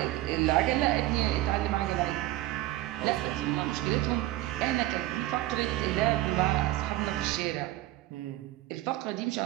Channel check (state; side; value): quieter; left; 16.6 dB